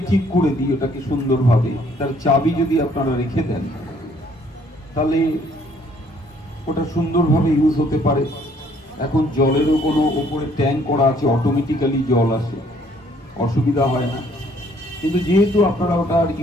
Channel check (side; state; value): both; normal; correlation 0.63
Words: ঠিক করে দিই ওটাকে সুন্দরভাবে, তার চাবি যদি আপনারা রেখে দেন, তাহলে ওটা সুন্দরভাবে ইউজ হতে পারে। এখন জলেরও কোনো উপরে ট্যাঙ্ক করা আছে, অটোমেটিক্যালি জল আসে, অসুবিধা হয় না। কিন্তু যেহেতু আপনারা ওটা আর